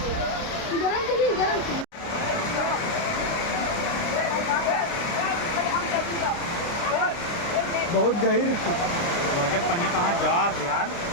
बहुत गहीर जब पनिया कहाँ जात यार,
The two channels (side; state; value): right; late; 29 ms